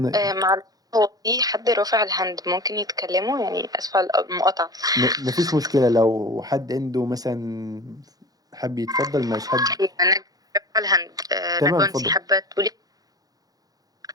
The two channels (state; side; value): late; left; 0.18 ms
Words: معلش، هو في حد رافع الهاند ممكن يتكلموا؟ يعني اسفة على المقاطعة. مفيش مشكلة، لو حد عنده مثلا حب يتفضل، مش حد. انا رافعة الهاند. تمام نانسي اتفضل. حابة تقولي؟